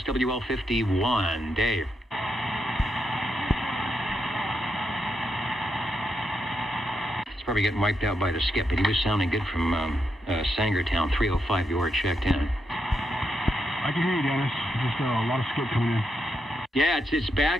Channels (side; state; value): both; normal; correlation 0.83